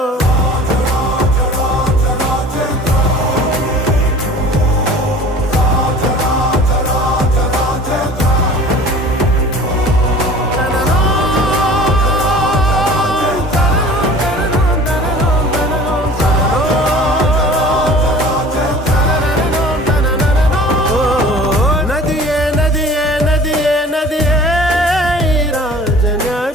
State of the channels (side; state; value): both; normal; correlation 0.44